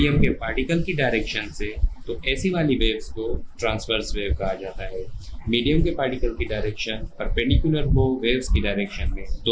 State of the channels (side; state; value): both; identical; correlation 1.00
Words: के पार्टिकल की डायरेक्शन से, तो ऐसी वाली वेव्स को ट्रांसवर्स वेव कहा जाता है। मीडियम के पार्टिकल की डायरेक्शन परपेंडिकुलर हो वेव्स की डायरेक्शन में,